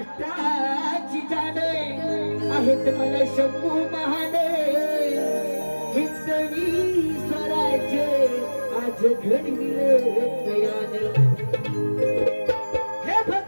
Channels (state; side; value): inverted; both; correlation -1.00